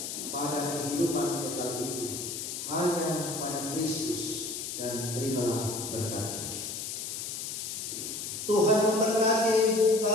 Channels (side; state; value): left; noise; hiss, 5 dB below the sound